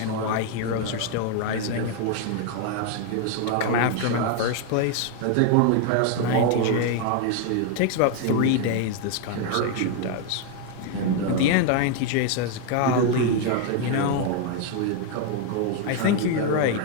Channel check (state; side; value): different; both; correlation 0.01